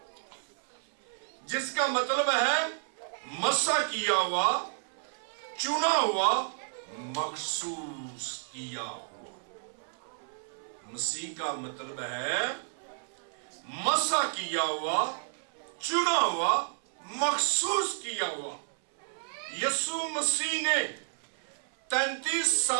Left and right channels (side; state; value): left; silent; 57 dB below the other